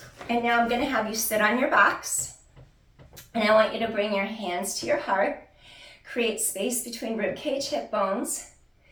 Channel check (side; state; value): both; identical; correlation 1.00